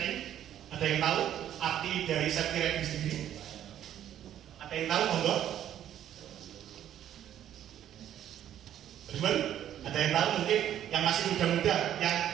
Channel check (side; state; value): left; quieter; 11.0 dB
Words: ada yang tahu arti dari safety riding sendiri? Ada yang tahu monggo? Bagaimana? Ada yang tahu mungkin yang masih muda-muda, yang